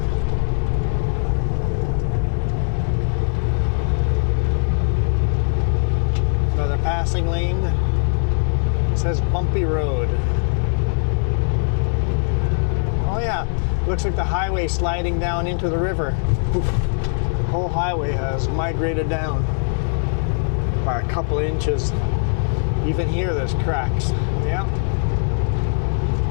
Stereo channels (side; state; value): right; silent; digital silence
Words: Another passing lane. It says bumpy road. Oh yeah, looks like the highway sliding down into the river. Oof. The whole highway has migrated down by a couple inches. Even here there's cracks. Yeah.